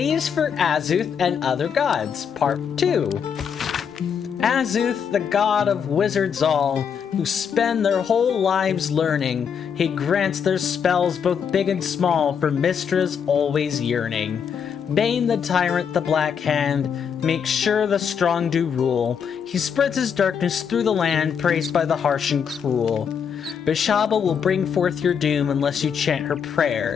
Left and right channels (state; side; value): quieter; right; 7.2 dB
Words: is for Azuth and other gods, part 2. Azuth, the god of wizards all, who spend their whole lives learning. He grants their spells both big and small for Mistra's always yearning. Bane the tyrant, the black hand, makes sure the strong do rule. He spreads his darkness through the land, praised by the harsh and cruel. Bishaba will bring forth your doom unless you chant her